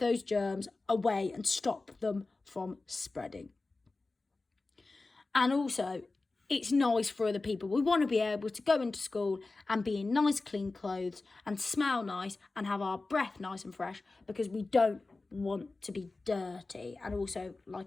germs away and stop them from spreading. And also, it's nice for other people. We want to be able to go into school and be in nice clean clothes and smell nice and have our breath nice and fresh, because we don't want to be dirty. And also,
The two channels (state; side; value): quieter; right; 3.5 dB